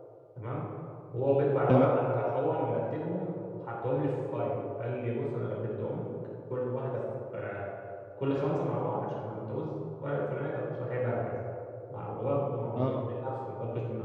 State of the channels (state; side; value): identical; both; correlation 1.00